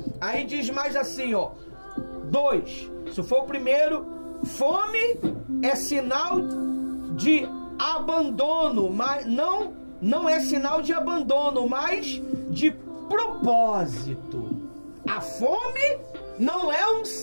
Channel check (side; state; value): both; inverted; correlation -1.00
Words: Aí diz mais assim, ó. 2. Se for o primeiro, fome é sinal de abandono, mas não é sinal de abandono, mas de propósito. A fome não é um